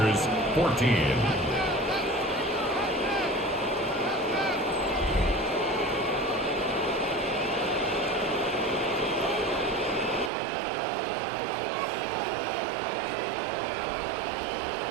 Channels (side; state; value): left; drops out; at 10.3 s